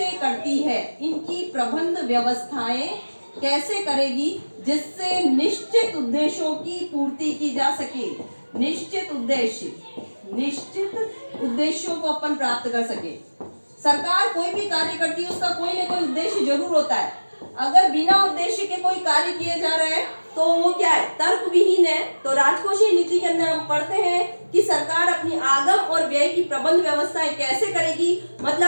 करती है, इनकी प्रबंध व्यवस्थाएं कैसे करेगी जिससे निश्चित उद्देश्यों की पूर्ति की जा सके। निश्चित उद्देश्यों को अपन प्राप्त कर सके। सरकार कोई भी कार्य करती है, उसका कोई ना कोई उद्देश्य जरूर होता है। अगर बिना उद्देश्य के कोई कार्य किए जा रहे हैं तो वो क्या है, तर्क विहीन है। तो राजकोषीय नीति के अंदर हम पढ़ते हैं कि सरकार अपनी आगम और व्यय की प्रबंध व्यवस्थाएं कैसे करेगी,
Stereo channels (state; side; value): inverted; both; correlation -1.00